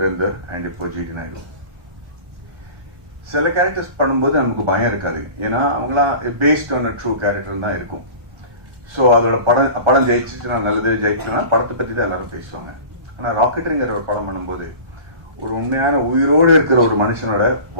அண்ட் இப்போ ஜிடி நாயுடு. சில கேரக்டர்ஸ் பண்ணும்போது நமக்கு பயம் இருக்காது, ஏன்னா அவங்களாம் பேஸ்ட் ஆன் ட்ரூ கேரக்டர் தான் இருக்கும். ஸோ அதோட படம் ஜெயிச்சுட்டு நான் நல்லது ஜெயிச்சுனா படத்தை பற்றி தான் எல்லாரும் பேசுவாங்க. ஆனால் ராக்கெட்ரிங்கிற ஒரு படம் பண்ணும்போது ஒரு உண்மையான உயிரோடு இருக்கிற ஒரு மனுஷனோட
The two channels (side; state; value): left; late; 1.3 ms